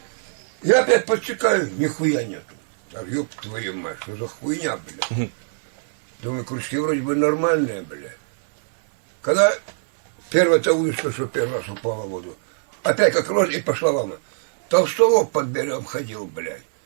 Я опять подсекаю, нихуя нету. А ёб твою мать, что за хуйня, бля. Думаю, крючки вроде бы нормальные, бля. Когда первая-то удочка, что первый раз упала в воду, опять как рожь и пошла волна. Толстолоб под берегом ходил, блядь.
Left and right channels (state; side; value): silent; left; 58 dB below the other